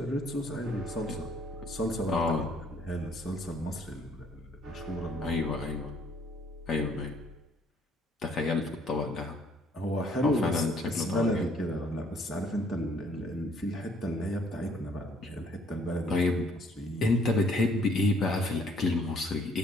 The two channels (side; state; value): both; normal; correlation 0.62